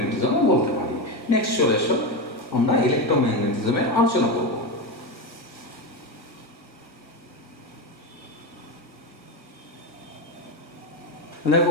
বলতে পারি। নেক্সট চলে এসো, আমরা ইলেকট্রোম্যাগনেটিজমের আলোচনা করব।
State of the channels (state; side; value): late; right; 1.5 ms